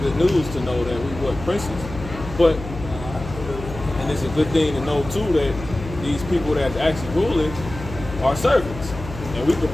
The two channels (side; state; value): left; noise; hum, 11 dB below the sound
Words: news to know that we were princes. But, and it's a good thing to know too that these people that's actually ruling are servants. And we can